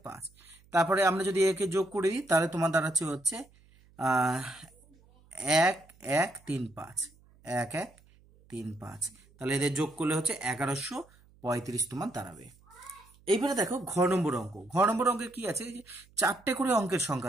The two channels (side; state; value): right; noise; hum, 29 dB below the sound